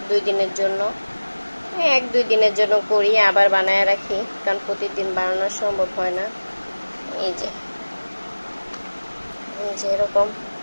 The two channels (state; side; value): inverted; both; correlation -1.00